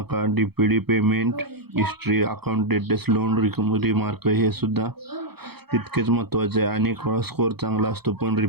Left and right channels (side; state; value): left; late; 0.97 ms